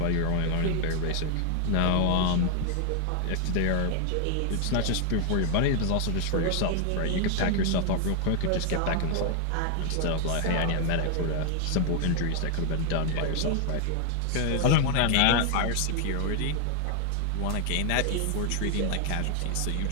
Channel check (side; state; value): both; different; correlation 0.00